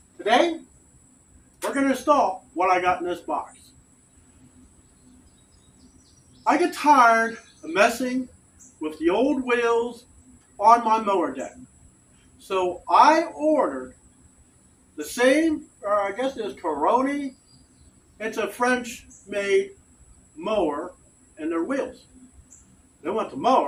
Today, we're going to install what I got in this box. I get tired of messing with the old wheels on my mower deck. So I ordered the same, or I guess it's Coroni. It's a French-made mower and their wheels. They want the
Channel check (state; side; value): identical; both; correlation 1.00